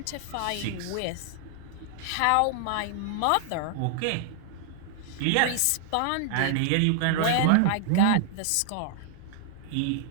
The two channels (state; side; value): different; both; correlation -0.01